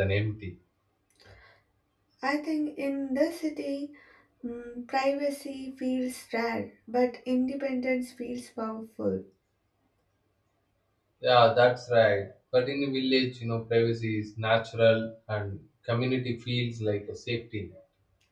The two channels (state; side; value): identical; both; correlation 1.00